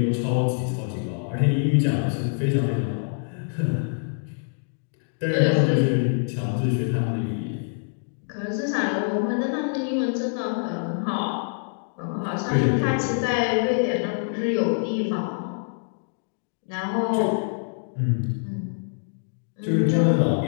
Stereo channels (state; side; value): silent; right; digital silence